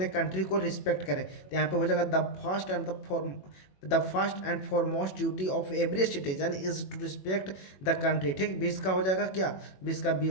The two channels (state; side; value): late; right; 21 ms